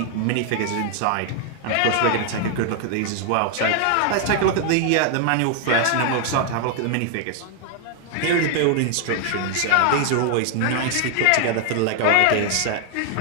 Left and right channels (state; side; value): different; both; correlation 0.00